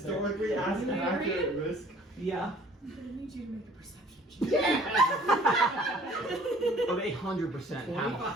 accurate risk. Yeah. I'm gonna need you to make a perception check. Oh, they 100% have a full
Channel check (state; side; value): normal; both; correlation 0.54